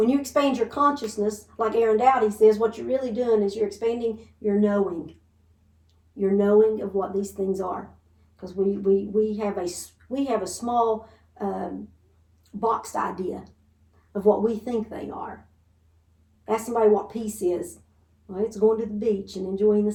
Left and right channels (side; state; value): both; identical; correlation 1.00